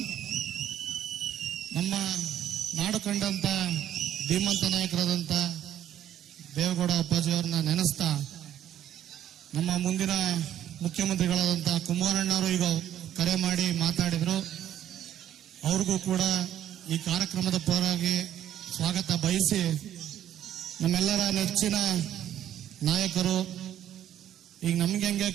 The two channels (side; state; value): left; quieter; 11.2 dB